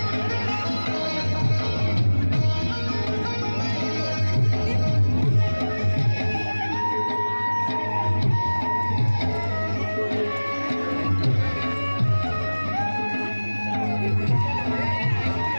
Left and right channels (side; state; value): both; inverted; correlation -1.00